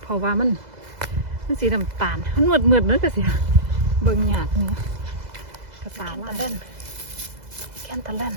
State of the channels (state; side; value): late; left; 2.0 ms